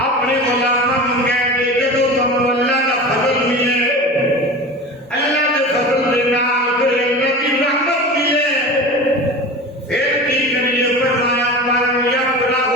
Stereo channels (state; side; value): normal; both; correlation 0.32